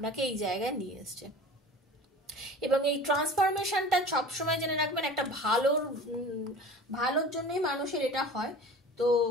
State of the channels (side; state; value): both; normal; correlation 0.39